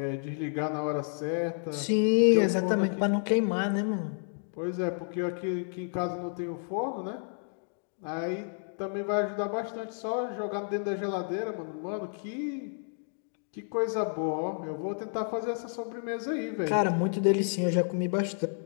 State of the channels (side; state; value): right; silent; digital silence